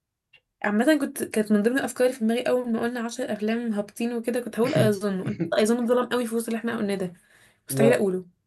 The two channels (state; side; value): identical; both; correlation 1.00